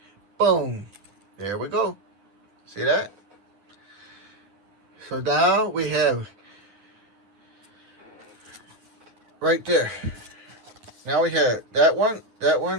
Boom. There we go. See that? So now we have right there. Now we have that one,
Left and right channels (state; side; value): late; left; 9.7 ms